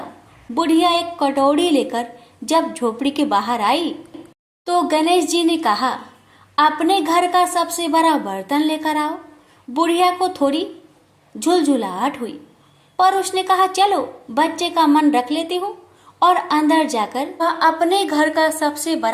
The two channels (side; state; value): both; identical; correlation 1.00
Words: बुढ़िया एक कटोरी लेकर जब झोपड़ी के बाहर आई तो गणेश जी ने कहा, अपने घर का सबसे बड़ा बर्तन लेकर आओ। बुढ़िया को थोड़ी झुलझुलाहट हुई, पर उसने कहा, चलो बच्चे का मन रख लेती हूँ। और अंदर जाकर वह अपने घर का सबसे